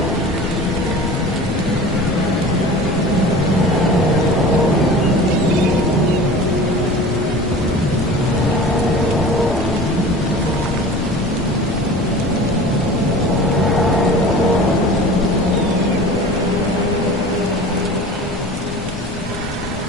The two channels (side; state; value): both; normal; correlation 0.39